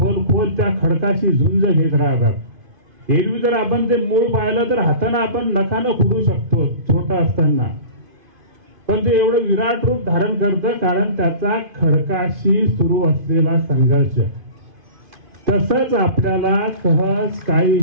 त्या खडकाशी झुंज घेत राहतात. एरवी जर आपण ते मूळ पाहिलं तर हाताने आपण नखानं खुडू शकतो छोटा असताना, पण ते एवढं विराट रूप धारण करतं कारण त्याचा खडकाशी सुरू असलेला संघर्ष. तसंच आपल्याला सहज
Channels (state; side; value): late; left; 2.5 ms